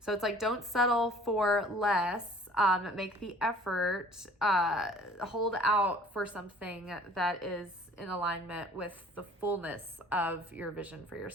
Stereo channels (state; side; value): normal; both; correlation 0.51